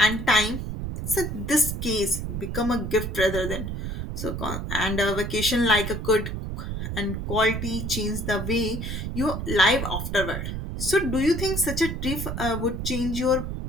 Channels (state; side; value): noise; right; rumble, 4 dB below the sound